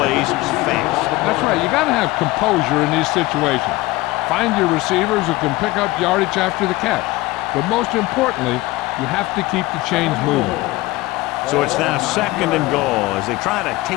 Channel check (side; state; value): right; quieter; 19.6 dB